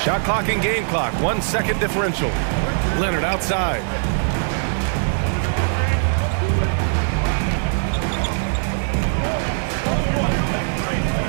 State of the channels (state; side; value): silent; left; 56 dB below the other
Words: Shot clock and game clock. 1 second differential. Leonard outside.